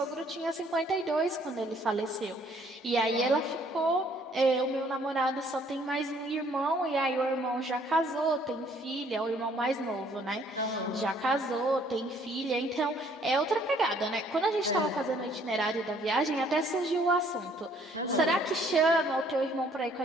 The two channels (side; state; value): both; normal; correlation 0.62